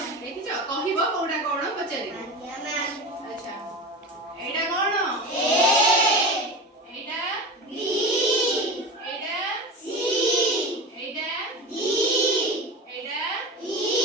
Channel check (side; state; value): both; normal; correlation 0.28